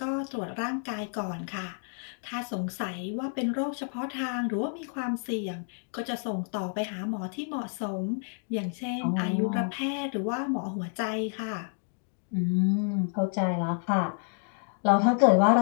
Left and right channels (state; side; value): silent; right; 58 dB below the other